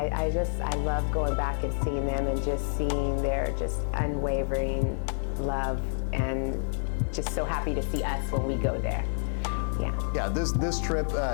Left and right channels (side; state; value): right; silent; 59 dB below the other